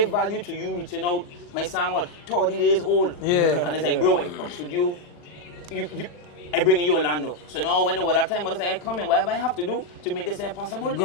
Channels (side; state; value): right; late; 40 ms